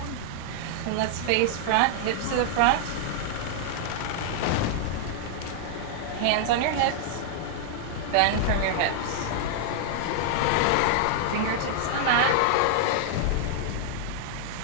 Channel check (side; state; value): both; different; correlation 0.00